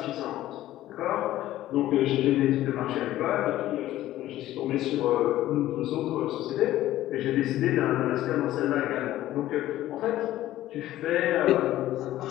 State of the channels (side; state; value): right; quieter; 14.3 dB